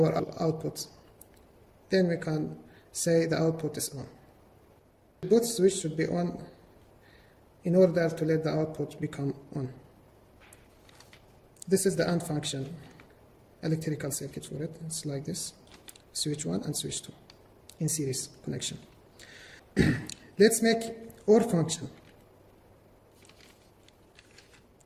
output. Then we can say the output is on. Both switches should be on in order to let the output become on. This is the AND function, electrical circuit for it. It's like this, switch 1 and switch 2 in series connection. Let's make OR function.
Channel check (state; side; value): identical; both; correlation 1.00